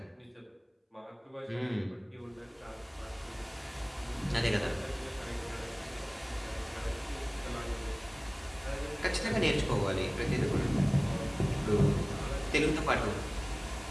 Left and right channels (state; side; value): identical; both; correlation 1.00